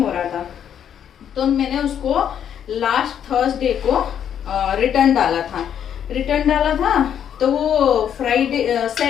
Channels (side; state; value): right; quieter; 9.1 dB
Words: रहा था। तो मैंने उसको लास्ट थर्सडे को रिटर्न डाला था। तो वो फ्राइडे